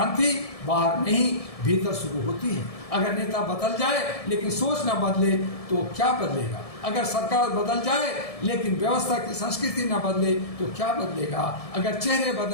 बाहर नहीं भीतर शुरू होती है। अगर नेता बदल जाए लेकिन सोच न बदले तो क्या बदलेगा? अगर सरकार बदल जाए लेकिन व्यवस्था की संस्कृति न बदले तो क्या बदलेगा? अगर चेहरे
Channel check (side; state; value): right; late; 1.7 ms